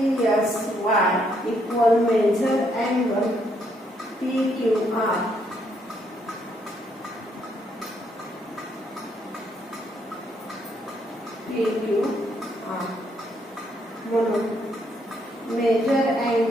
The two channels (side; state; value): both; normal; correlation 0.73